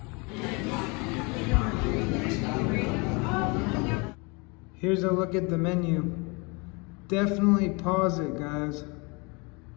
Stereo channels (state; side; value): quieter; right; 29.6 dB